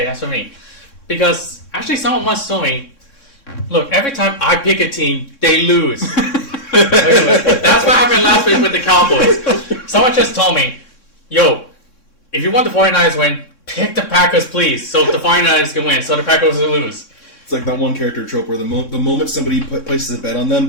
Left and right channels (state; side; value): late; right; 3.6 ms